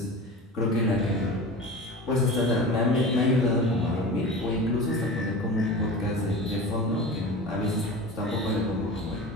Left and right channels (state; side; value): normal; both; correlation 0.33